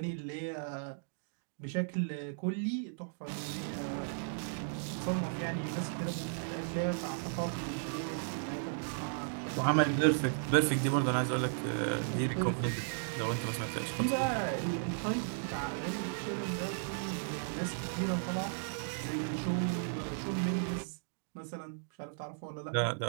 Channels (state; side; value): silent; left; digital silence